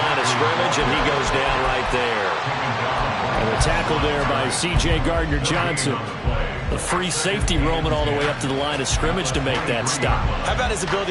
of scrimmage, and he goes down right there. And the tackle there by C.J. Gardner-Johnson. The free safety roaming all the way up to the line of scrimmage to make that stop. How about his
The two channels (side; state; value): both; identical; correlation 1.00